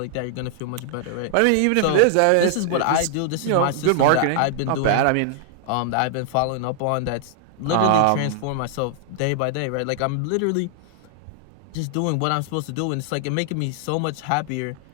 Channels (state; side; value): different; both; correlation 0.00